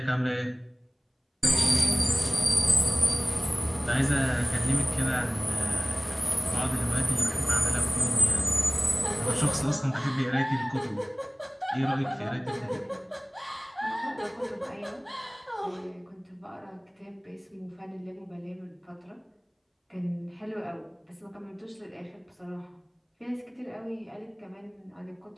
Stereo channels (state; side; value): identical; both; correlation 1.00